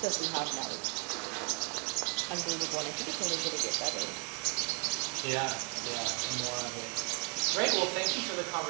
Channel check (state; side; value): quieter; left; 35.6 dB